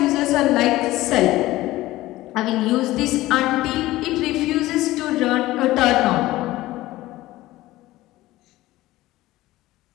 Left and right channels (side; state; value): right; quieter; 17.2 dB